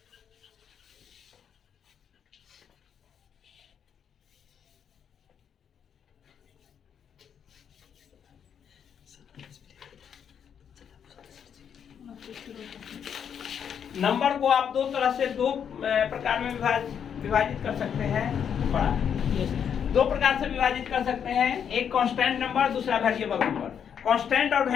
नंबर को आप दो प्रकार में विभाजित कर सकते हैं। दो प्रकार से विभाजित कर सकते हैं, एक कांस्टेंट नंबर, दूसरा वेरिएबल नंबर। कांस्टेंट और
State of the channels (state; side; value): quieter; right; 8.0 dB